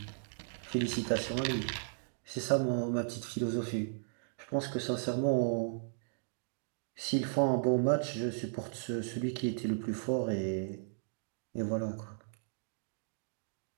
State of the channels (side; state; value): left; silent; digital silence